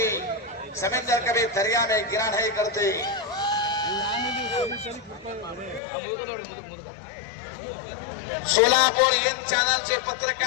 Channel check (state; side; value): drops out; right; at 5.8 s